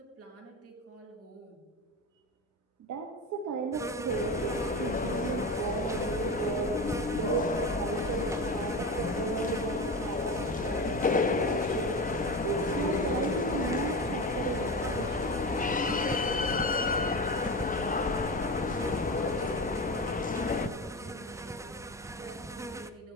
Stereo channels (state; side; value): normal; both; correlation 0.23